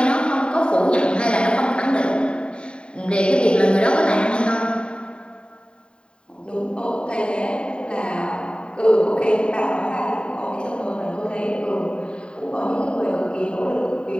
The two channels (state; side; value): late; right; 0.052 ms